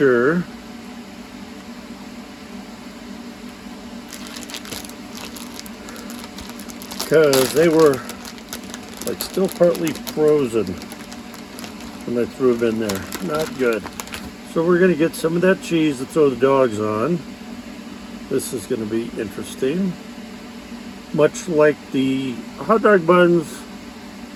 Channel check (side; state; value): both; identical; correlation 1.00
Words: because they were like still partly frozen when I threw them in there. Not good. So we're going to get some of that cheese to throw the dogs on. This is going to be interesting. Much like the hot dog buns,